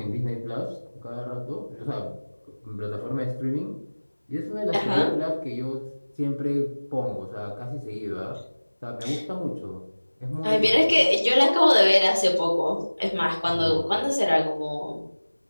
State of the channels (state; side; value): inverted; both; correlation -1.00